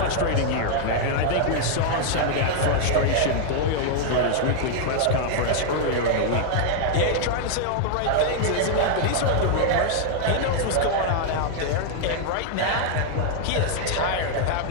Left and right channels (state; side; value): different; both; correlation 0.00